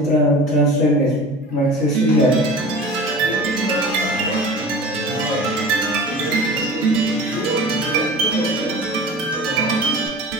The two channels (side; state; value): both; normal; correlation 0.38